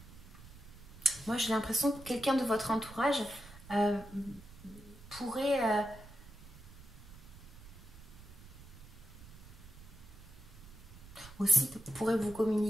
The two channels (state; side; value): noise; right; rumble, 18 dB below the sound